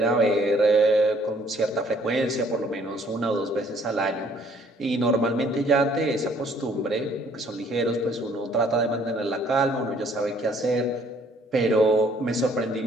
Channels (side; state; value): both; normal; correlation 0.61